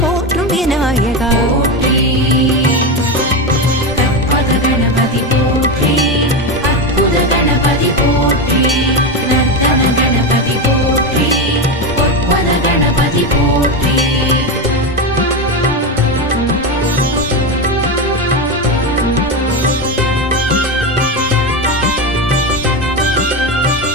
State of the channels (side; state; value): both; normal; correlation 0.15